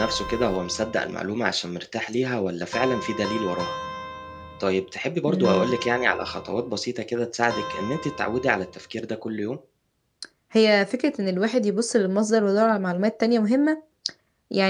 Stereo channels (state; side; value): identical; both; correlation 1.00